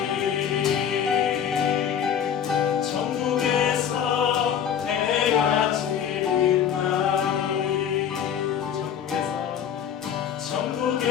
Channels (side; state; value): right; quieter; 8.7 dB